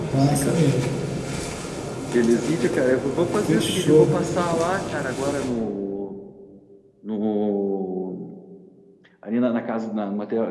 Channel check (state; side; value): identical; both; correlation 1.00